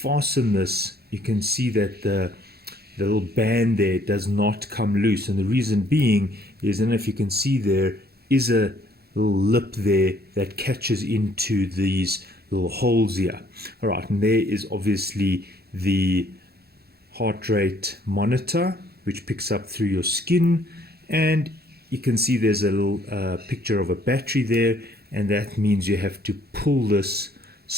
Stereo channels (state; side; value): late; left; 0.46 ms